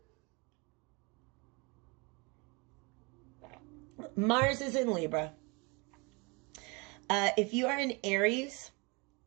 Mars is in Libra. If you are in Aries,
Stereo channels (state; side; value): quieter; left; 28.9 dB